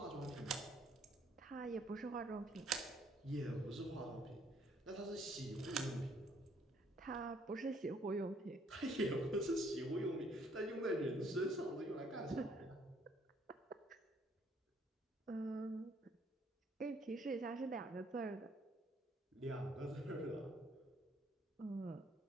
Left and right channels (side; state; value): both; normal; correlation 0.65